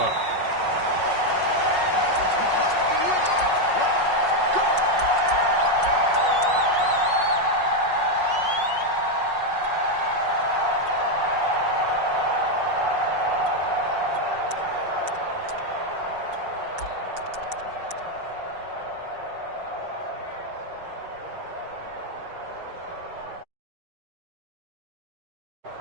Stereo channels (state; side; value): late; left; 5.5 ms